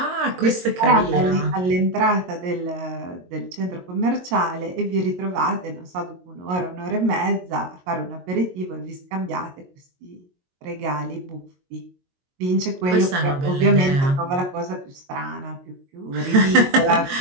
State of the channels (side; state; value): left; late; 22 ms